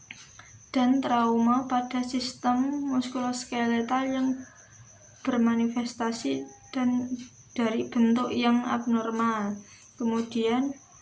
dan trauma pada sistem muskuloskeletal yang bermanifestasi dan dari bentuk yang abnormal. Kemudian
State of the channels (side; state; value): both; identical; correlation 1.00